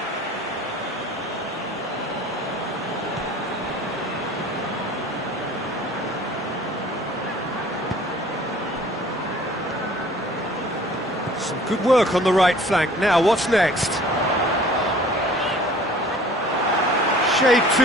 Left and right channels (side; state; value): both; normal; correlation 0.50